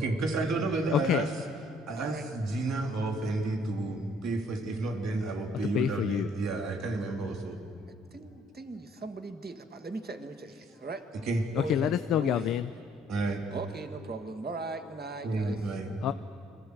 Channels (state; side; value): normal; both; correlation 0.62